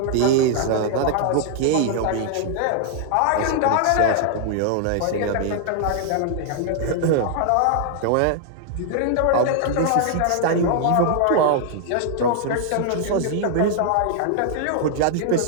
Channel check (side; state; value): both; different; correlation -0.01